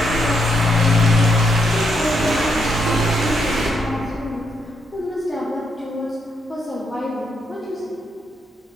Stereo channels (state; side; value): normal; both; correlation 0.78